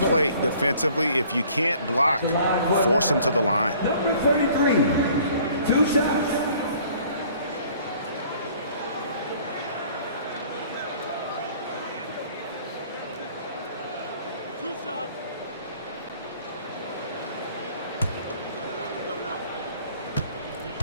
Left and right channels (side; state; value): both; inverted; correlation -0.55